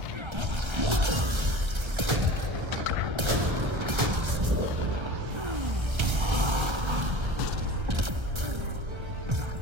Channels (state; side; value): late; left; 1.3 ms